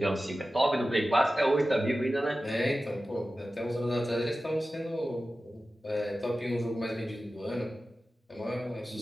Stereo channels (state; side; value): normal; both; correlation 0.94